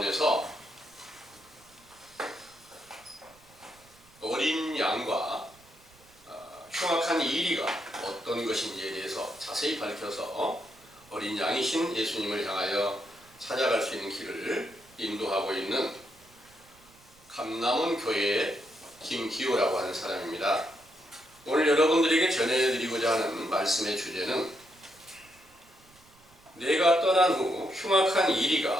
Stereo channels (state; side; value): noise; right; rumble, 28 dB below the sound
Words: 어린 양과 흉악한 이리가 어떤 것인지에 대해서 자세히 밝혀서 어린 양이신 예수님을 향하여 찾아갈 수 있는 길을 인도하고 있는 감남원 교회의 김기호라고 하는 사람입니다. 오늘 여러분들에게 전해드리고자 하는 말씀의 주제는 내가 떠난 후 흉악한